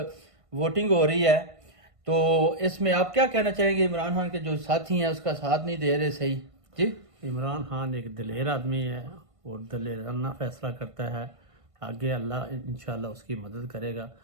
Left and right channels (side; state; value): left; late; 1.5 ms